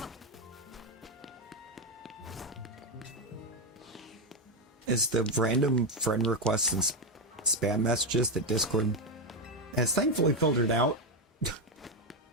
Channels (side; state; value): both; normal; correlation 0.07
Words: is the random friend requests and spam messages that Discord has thankfully filtered out